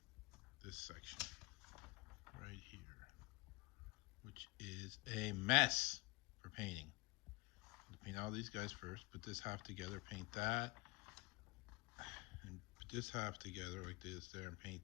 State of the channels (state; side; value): quieter; right; 24.4 dB